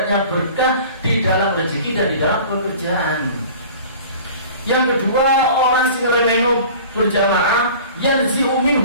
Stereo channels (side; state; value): both; inverted; correlation -0.43